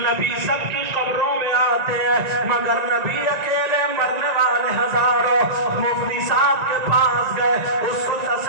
سب کی قبروں میں آتے ہیں مگر نبی اکیلے مرنے والے ہزاروں مفتی صاحب کے پاس گئے اس کو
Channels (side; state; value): left; late; 1.9 ms